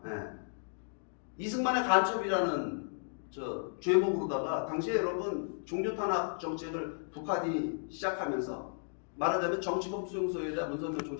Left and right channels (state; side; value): silent; right; digital silence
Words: 이승만의 간첩이라는 죄목으로다가, 당시에 여러분 종교탄압 정책을 북한이 시작하면서 말하자면 정치범 수용소에다 문선명